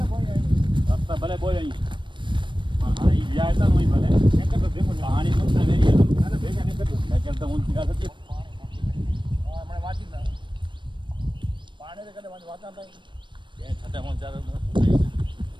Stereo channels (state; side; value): late; left; 0.23 ms